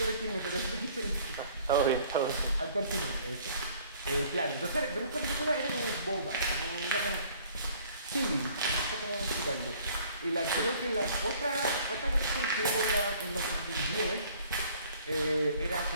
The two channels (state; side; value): inverted; both; correlation -0.55